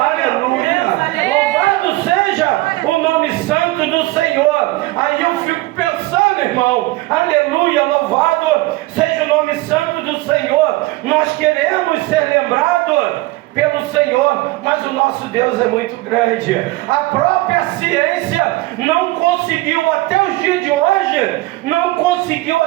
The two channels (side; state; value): left; quieter; 20.1 dB